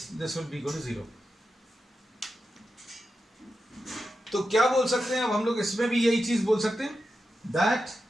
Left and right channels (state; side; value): normal; both; correlation 0.90